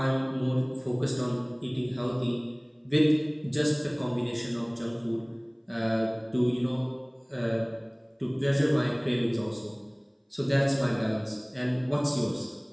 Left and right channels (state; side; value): identical; both; correlation 1.00